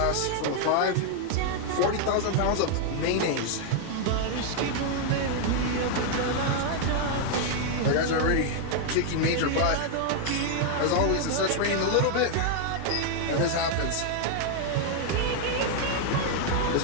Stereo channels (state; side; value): different; both; correlation 0.00